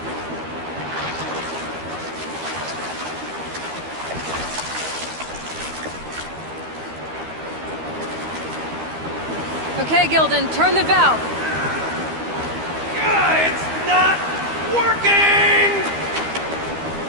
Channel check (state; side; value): late; left; 13 ms